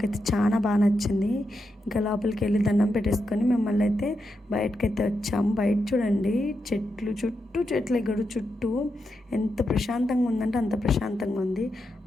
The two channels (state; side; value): normal; both; correlation 0.85